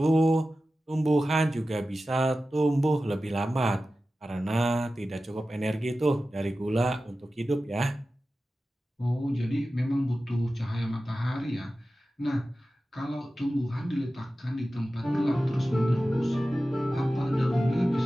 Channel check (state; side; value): normal; both; correlation 0.94